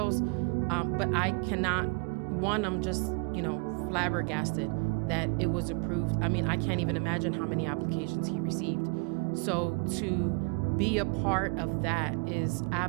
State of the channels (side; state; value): left; quieter; 33.7 dB